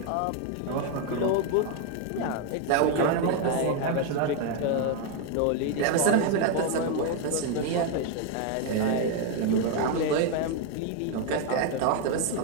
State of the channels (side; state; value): both; different; correlation 0.01